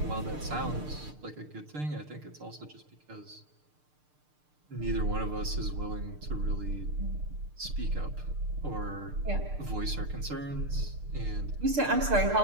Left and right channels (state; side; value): late; left; 6.6 ms